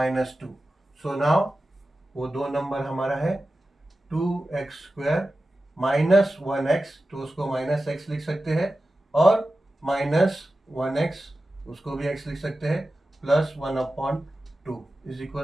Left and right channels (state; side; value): normal; both; correlation 0.94